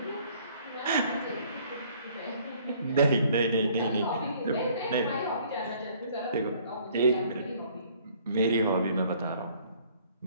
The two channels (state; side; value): inverted; both; correlation -0.59